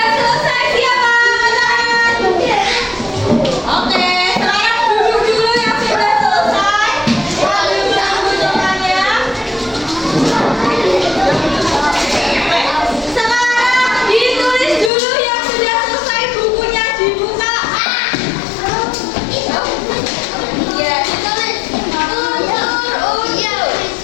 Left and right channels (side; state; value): right; drops out; at 14.9 s